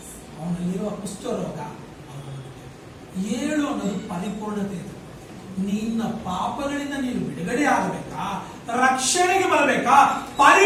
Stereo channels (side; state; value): both; identical; correlation 1.00